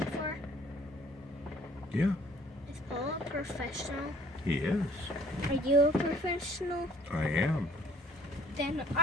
Yeah, Is Paul a professional? he is. Are you a professional? I am. Then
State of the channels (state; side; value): normal; both; correlation 0.57